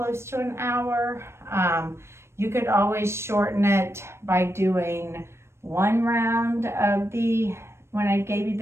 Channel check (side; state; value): left; late; 0.13 ms